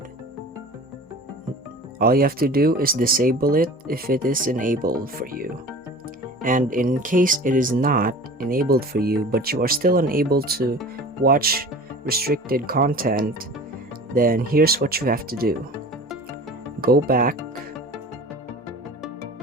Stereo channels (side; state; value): both; normal; correlation 0.40